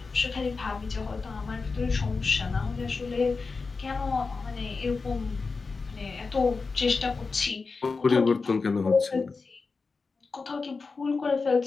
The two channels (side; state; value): right; quieter; 4.4 dB